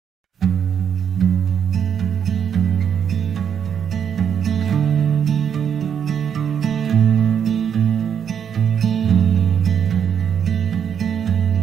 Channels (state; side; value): quieter; left; 8.0 dB